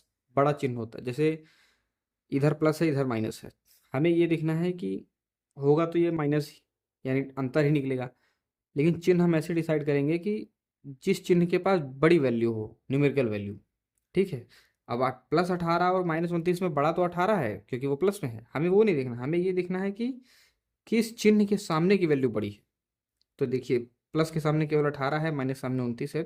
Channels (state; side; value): identical; both; correlation 1.00